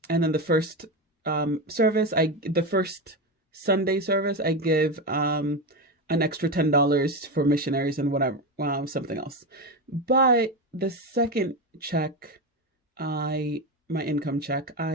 then the first the first Sunday service, I give an extra $10 for missionaries and whatever, something else. But the second check, my income check,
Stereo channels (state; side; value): normal; both; correlation 0.16